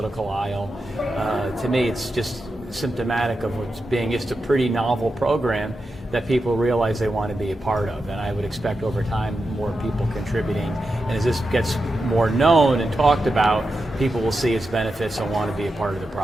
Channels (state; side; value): normal; both; correlation 0.89